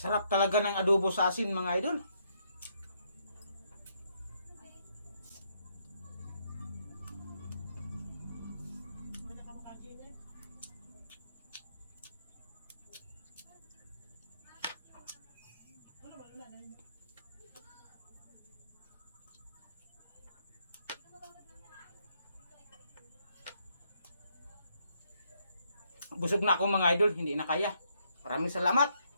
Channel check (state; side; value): inverted; both; correlation -0.74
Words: Sarap talaga ng adobo sa asin mga idol. Busog na ako mga idol, hindi na kaya. Maraming salamat